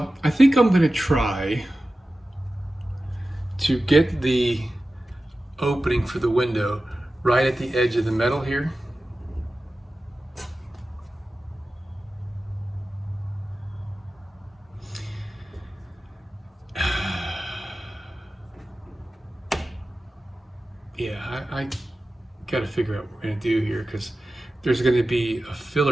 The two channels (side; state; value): both; normal; correlation 0.95